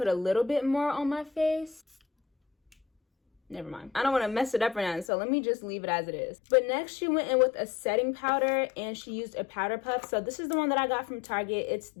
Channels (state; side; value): drops out; right; at 5.1 s